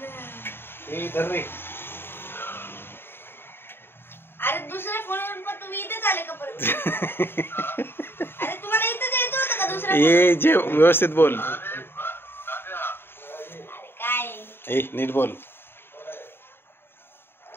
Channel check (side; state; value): right; late; 0.11 ms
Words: धर रे. अरे दुसऱ्या फोनवरून पण तुम्ही इथेच आले का परत? अरे तुम्हाला इथेच यायचं होतं का दुसऱ्या? ए जे व्यवस्थित बोल. अरे काय ए नीट बोल.